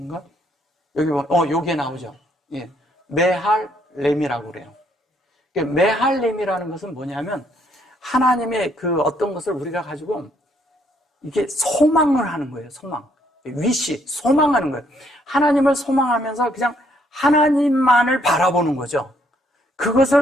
여기 보면, 여기에 나오죠. 예. 메할렘이라고 그래요. 메할렘이라는 것은 뭐냐면, 하나님의 그 어떤 것을 우리가 가지고, 이게 소망을 하는 거예요, 소망. 위시, 소망하는 거예요. 하나님을 소망하면서 그냥 하나님만을 바라보는 거죠.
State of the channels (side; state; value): both; normal; correlation 0.69